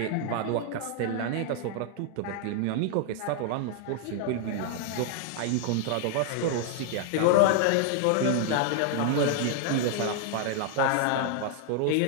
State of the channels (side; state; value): both; different; correlation 0.00